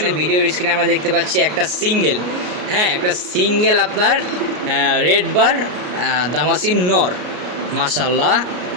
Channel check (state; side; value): late; left; 33 ms